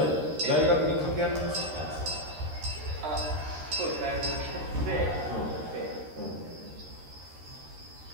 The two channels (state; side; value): late; left; 13 ms